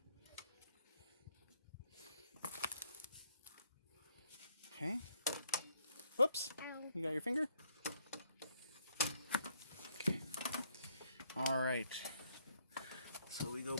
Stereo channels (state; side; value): inverted; both; correlation -0.69